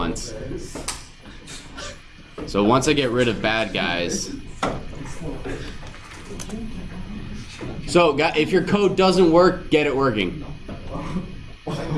So once I get rid of bad guys. So if your code doesn't work, get it working.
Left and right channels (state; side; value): identical; both; correlation 1.00